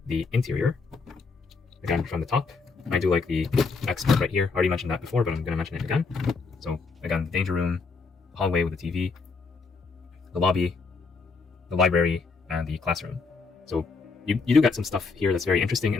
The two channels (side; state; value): right; quieter; 4.5 dB